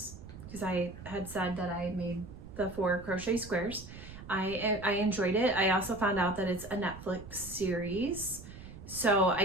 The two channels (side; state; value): right; noise; rumble, 14 dB below the sound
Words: because I had said that I made the 4 crochet squares. I enjoyed it. I also found out that it's a Netflix series. So